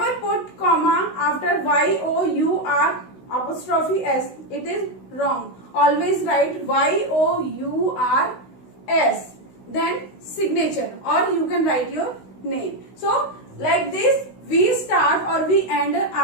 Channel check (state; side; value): late; right; 16 ms